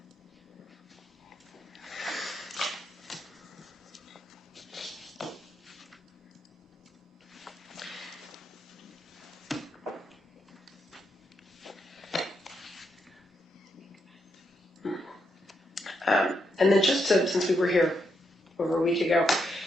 And then since we were here over a week ago,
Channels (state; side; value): normal; both; correlation 0.81